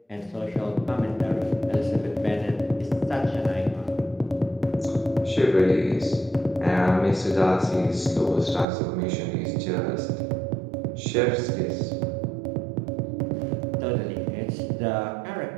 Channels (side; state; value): left; drops out; at 8.7 s